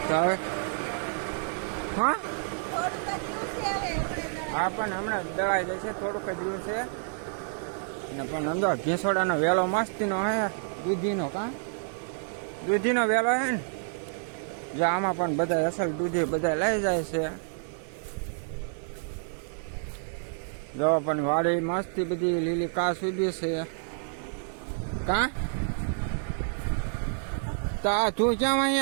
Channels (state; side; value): silent; left; 59 dB below the other